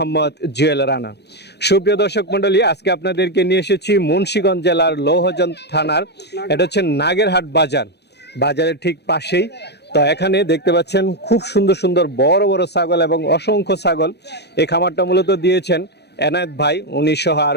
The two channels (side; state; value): right; late; 0.49 ms